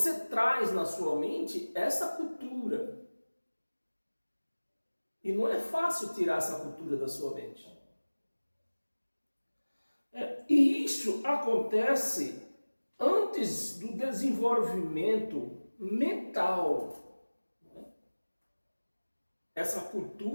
traz na sua mente essa cultura. E não é fácil tirar essa cultura da sua mente. E isso acontece antes do desenvolvimento mental. Essa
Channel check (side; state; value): both; inverted; correlation -1.00